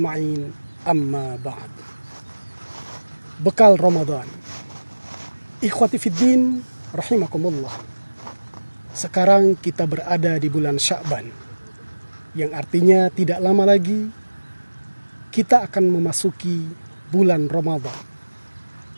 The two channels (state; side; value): inverted; both; correlation -1.00